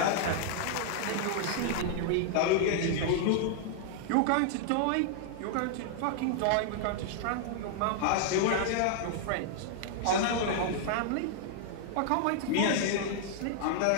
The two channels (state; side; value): different; both; correlation -0.01